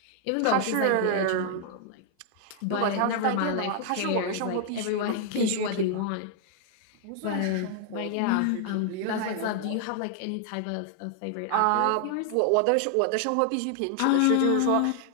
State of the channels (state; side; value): different; both; correlation 0.00